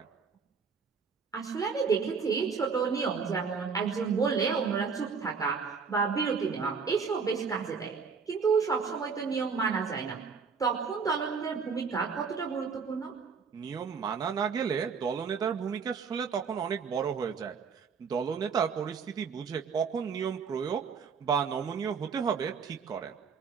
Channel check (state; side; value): quieter; left; 5.7 dB